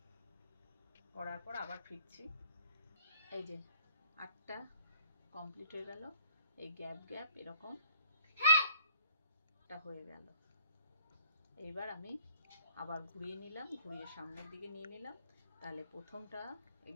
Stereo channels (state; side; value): inverted; both; correlation -0.58